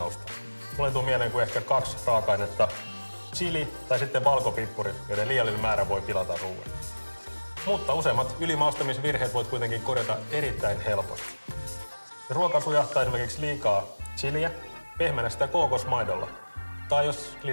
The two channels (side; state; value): both; inverted; correlation -1.00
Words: Mulle tuu mieleen kuin ehkä 2 raaka-ainetta, chili tai sitten valkopippurit, joiden liiallinen määrä voi pilata ruoan. Mutta useimmat ylimaustamisvirheet voit kuitenkin korjata erittäin helposti. Jos ruoka sujahtaa esimerkiksi liikaa chiliä, pehmennä sitä kookosmaidolla. Tai jos